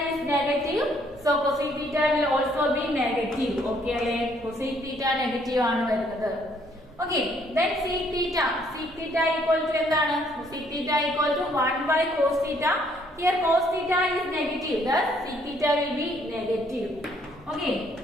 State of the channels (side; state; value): both; normal; correlation 0.66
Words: is negative, so cosec theta will also be negative. Okay അല്ലേ, cosec theta negative ആണ് വരുന്നത്. Okay, then sec theta. Sec theta equal to എന്താണ്? Sec theta equal to 1 by cos theta. Here cos theta is negative, thus sec theta will be negative. Okay,